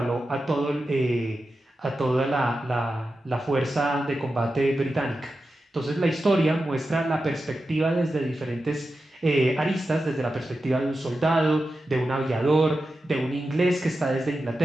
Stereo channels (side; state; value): both; normal; correlation 0.91